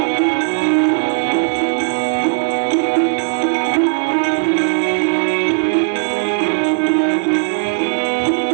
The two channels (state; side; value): quieter; left; 39.8 dB